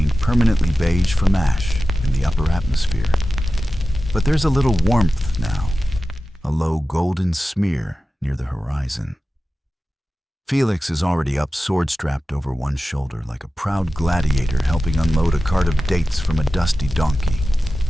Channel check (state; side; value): normal; both; correlation 0.94